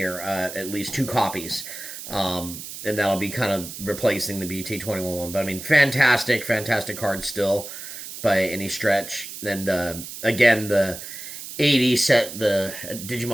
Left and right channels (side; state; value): right; noise; hiss, 10 dB below the sound